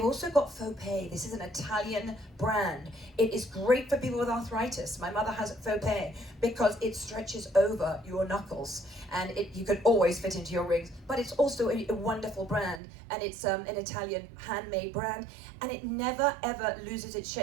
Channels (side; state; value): left; drops out; at 12.8 s